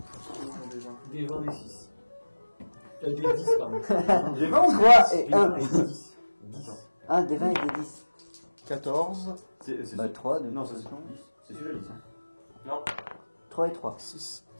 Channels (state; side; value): inverted; both; correlation -1.00